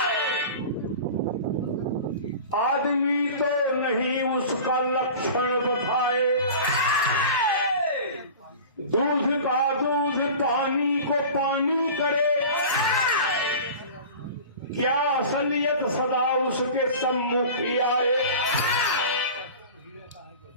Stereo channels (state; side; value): inverted; both; correlation -0.37